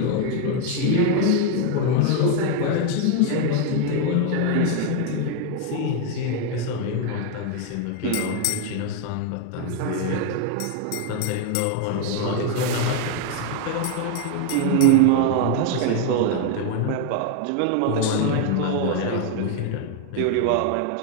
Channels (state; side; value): different; both; correlation 0.01